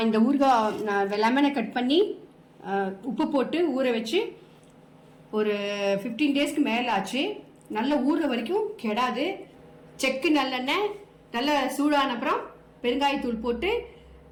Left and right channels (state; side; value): identical; both; correlation 1.00